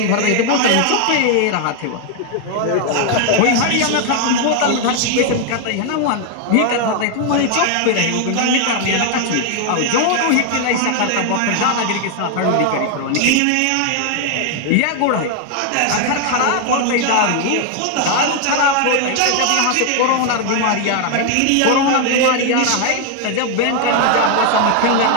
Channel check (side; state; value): both; different; correlation 0.01